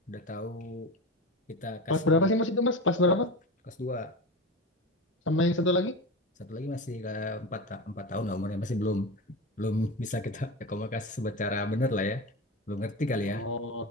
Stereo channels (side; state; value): both; normal; correlation 0.24